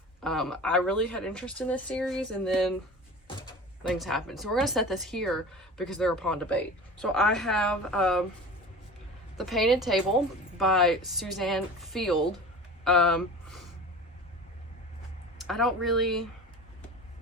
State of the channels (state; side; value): normal; both; correlation 0.37